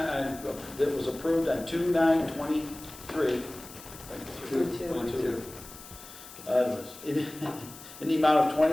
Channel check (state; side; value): noise; left; hiss, 16 dB below the sound